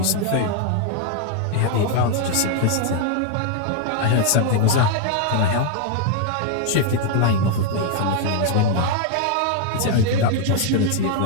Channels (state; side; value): different; both; correlation 0.00